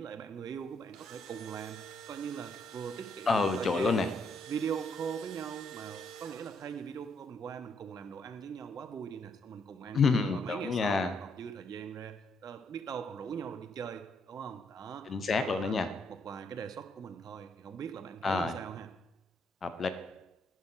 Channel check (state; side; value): normal; both; correlation 0.73